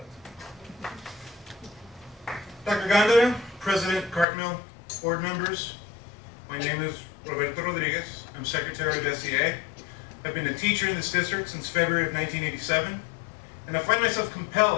that. Dr. Gondara, President, Cartmill, board members, my name is Roberto Rodriguez. I'm Secretary of SEA. I've been a teacher in this district since February of 1987, and I find myself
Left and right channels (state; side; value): drops out; right; at 4.2 s